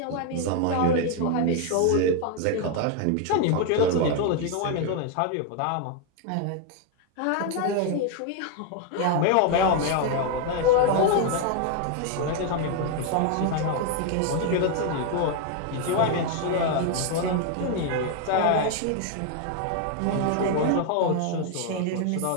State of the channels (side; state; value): both; different; correlation 0.01